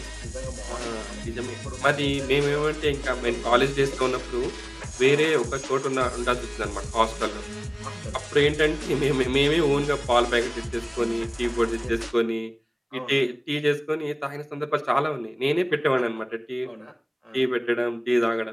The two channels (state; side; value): identical; both; correlation 1.00